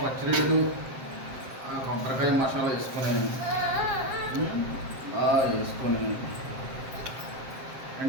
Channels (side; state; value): left; late; 7.5 ms